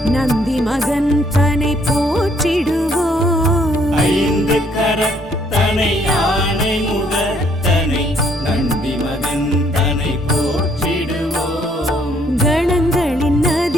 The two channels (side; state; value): both; normal; correlation 0.66